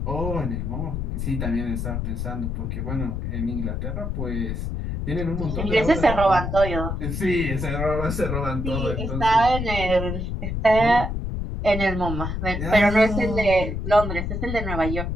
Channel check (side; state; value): left; noise; rumble, 3 dB below the sound